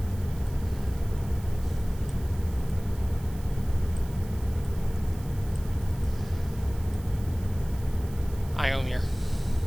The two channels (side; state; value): right; noise; hiss, 21 dB below the sound